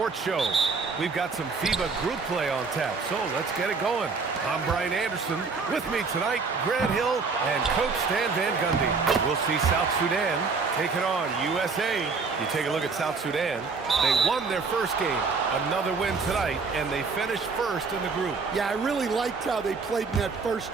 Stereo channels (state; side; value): quieter; left; 4.6 dB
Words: Show. We've got some FIBA group play on tap, so let's get it going. I'm Brian Anderson. With me tonight, Grant Hill and Coach Stan Van Gundy. We'll see South Sudan taking on USA. You take a look at South Sudan. They won their first game. Another win tonight, and they finished first in the group. Yeah, I really liked how they played in that first